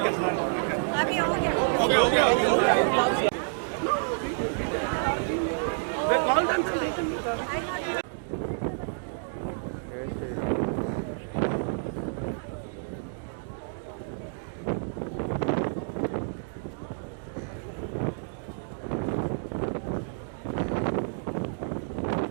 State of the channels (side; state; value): left; silent; digital silence